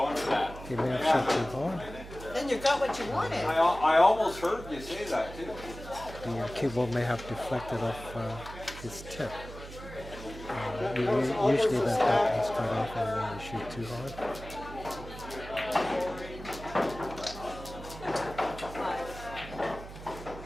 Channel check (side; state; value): right; noise; hum, 13 dB below the sound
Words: He may have shot too hard. Then you got what you wanted. I almost heard you say that too. The cue ball may have deflected off his tip. Usually that happens quite often when you shoot too hard.